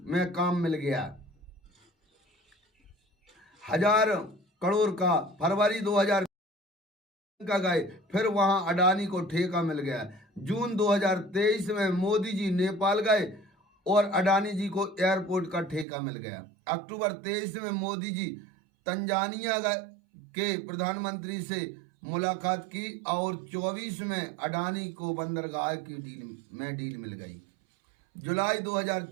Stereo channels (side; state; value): left; drops out; at 15.9 s